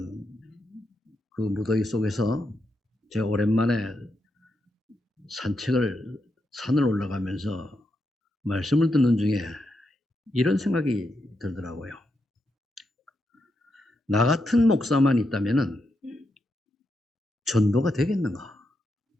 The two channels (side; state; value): both; normal; correlation 0.84